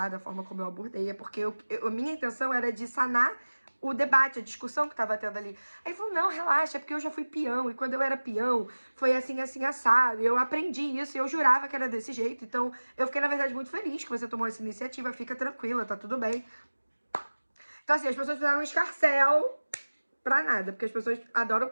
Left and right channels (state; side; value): inverted; both; correlation -1.00